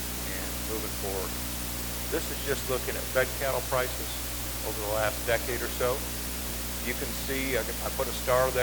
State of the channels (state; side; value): identical; both; correlation 1.00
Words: and moving forward. This is just looking at fed cattle prices over the last decade or so. You can see, I put a star